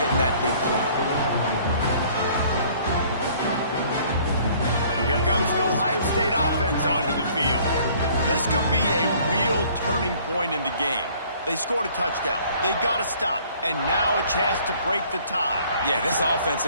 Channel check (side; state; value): both; inverted; correlation -0.56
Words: getting that big play. Here comes the Ohio State offense onto the field. This could be a real turning point in the game. They scored a touchdown. They got to stop. And now a chance to break the tie. Yeah, this offense